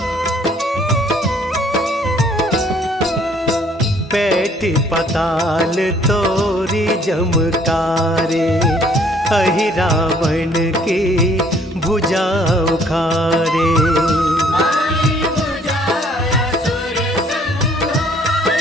पैठ पताल तोरी जमकारे, अहि रावण की भुजा उखारे। माई बुझाया सुर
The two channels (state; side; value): normal; both; correlation 0.60